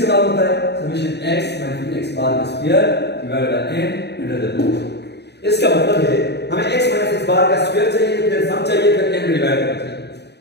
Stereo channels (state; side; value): late; right; 0.49 ms